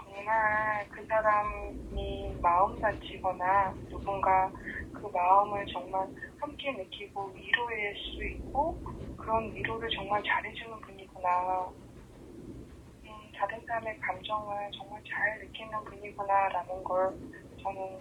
그 사람이 마음 다치거나 누군가 그 마음을 정말 함께 느끼고 위로할 수 있고 그런 위로를 정말 잘해주는 분이구나. 다른 사람의 감정을 정말 잘 느끼는 분이구나라는 걸 저는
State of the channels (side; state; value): both; identical; correlation 1.00